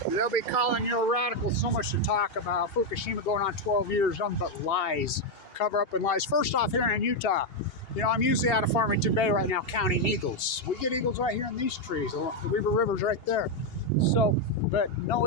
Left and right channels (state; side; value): late; right; 2.8 ms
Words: They'll be calling you a radical. So much to talk about. Fukushima going on 12 years, nothing but lies. Cover up and lies. First off, here in Utah, you know, I'm usually out of Farmington Bay right now counting eagles. We get eagles right here in these trees. The Weaver River's right there. So, but